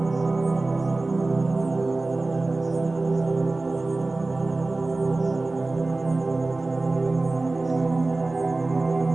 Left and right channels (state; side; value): quieter; left; 3.2 dB